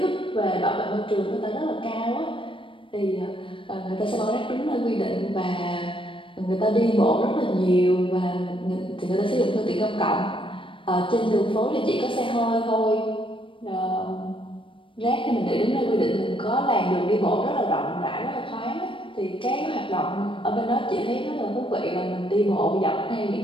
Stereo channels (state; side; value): late; right; 0.25 ms